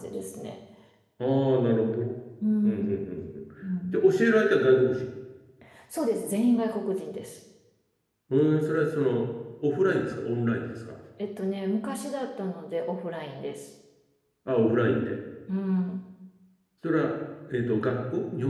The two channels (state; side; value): identical; both; correlation 1.00